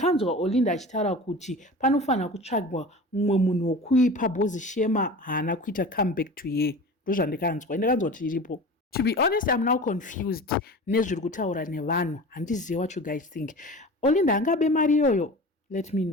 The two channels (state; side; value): normal; both; correlation 0.35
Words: Olinda achitaura kuti panofanira kutsvagwa mumwe munhu wokuipa bhozi shema haana kuita comeback to ye. Ndozvandakanzwa. Ndakanzwa kuti iripo. To be honest, I'm now confused nezviri kutaura nevanhu. Handizivi what you guys think. Olinda angabe mari iyoyo? Let me